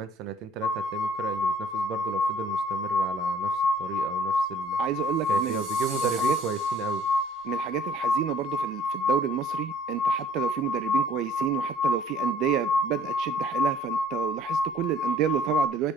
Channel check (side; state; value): both; normal; correlation 0.56